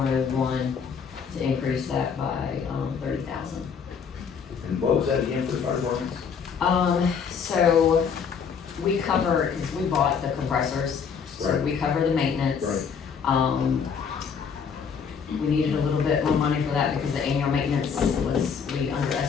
to increase that by, 30,000. And what was that again for the fire departments? So we cover, cause we bought the compressors, so Right. we cover the maintenance. Right. We needed a little bit more money for that because the annual maintenance was, we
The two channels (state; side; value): quieter; right; 6.5 dB